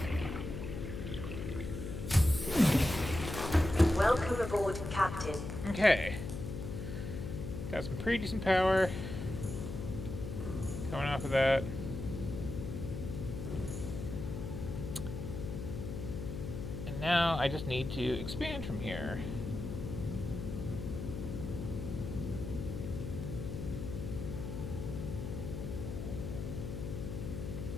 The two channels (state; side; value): noise; left; hum, 6 dB below the sound